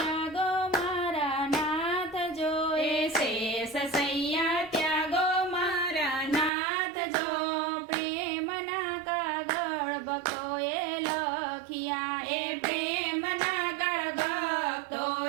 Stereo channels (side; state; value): left; drops out; at 6.5 s